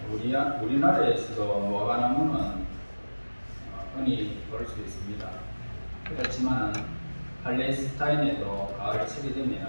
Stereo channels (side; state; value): both; inverted; correlation -1.00